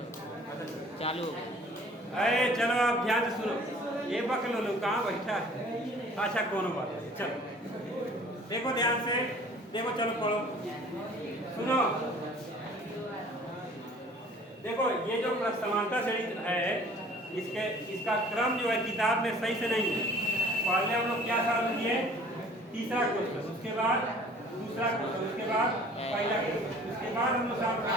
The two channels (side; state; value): both; normal; correlation 0.51